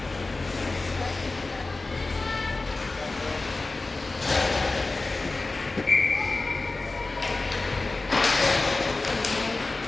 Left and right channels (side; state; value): right; quieter; 3.4 dB